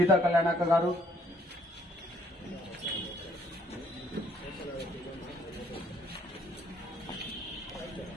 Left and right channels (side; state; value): both; normal; correlation 0.65